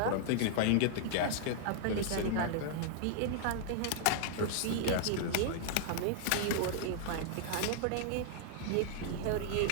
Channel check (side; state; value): both; different; correlation -0.01